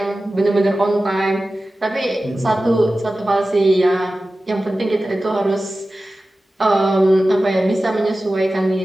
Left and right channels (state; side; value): normal; both; correlation 0.95